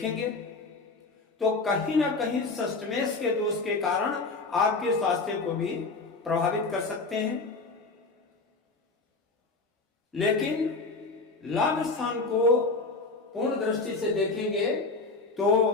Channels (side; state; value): right; quieter; 3.8 dB